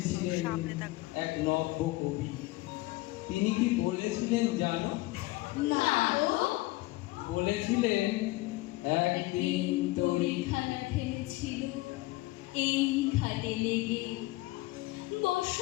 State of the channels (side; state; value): right; quieter; 20.2 dB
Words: এক নব্য কবি। তিনি কি বলেছিলেন জানো? না গো। বলেছিলেন, একদিন তরি তরিখানা ফেলেছিল এই ঘাটে লেগে,